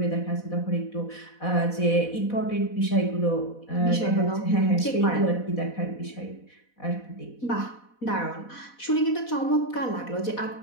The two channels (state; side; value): late; right; 4.1 ms